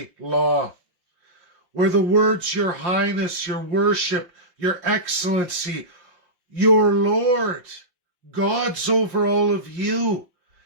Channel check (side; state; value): left; late; 5.7 ms